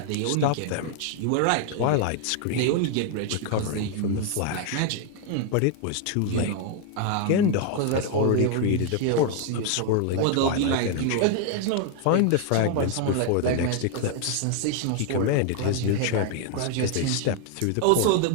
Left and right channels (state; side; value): different; both; correlation 0.00